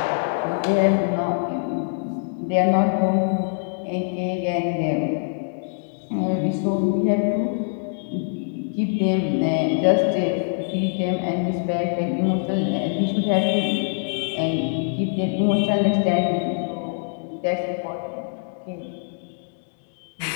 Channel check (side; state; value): right; silent; digital silence